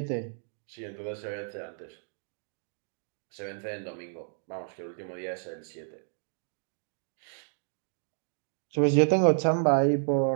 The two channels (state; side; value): silent; left; 57 dB below the other